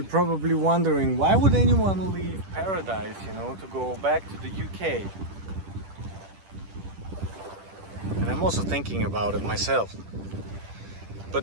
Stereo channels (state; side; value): late; left; 10 ms